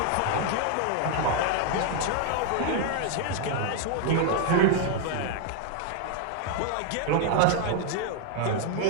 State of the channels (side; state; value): both; different; correlation 0.01